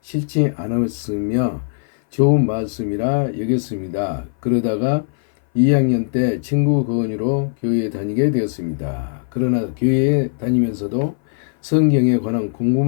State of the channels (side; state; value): right; silent; 59 dB below the other